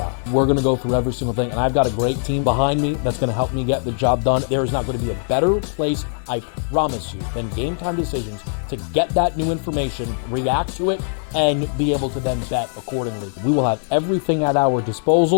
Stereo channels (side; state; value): right; silent; 57 dB below the other